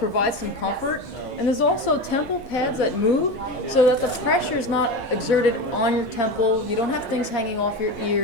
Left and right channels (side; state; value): both; normal; correlation 0.24